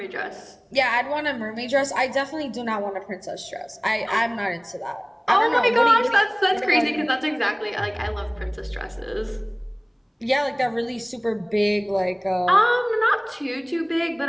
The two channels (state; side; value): identical; both; correlation 1.00